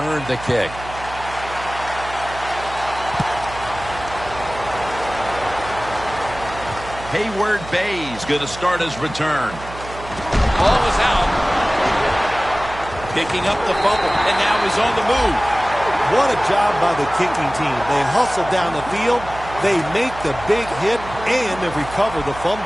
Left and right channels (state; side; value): noise; right; hum, 14 dB below the sound